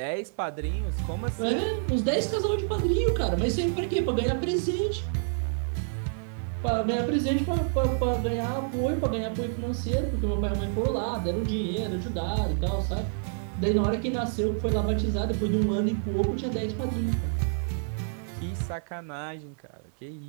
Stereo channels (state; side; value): silent; left; digital silence